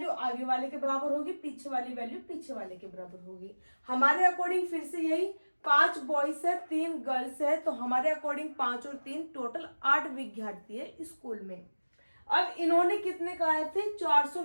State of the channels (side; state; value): both; inverted; correlation -1.00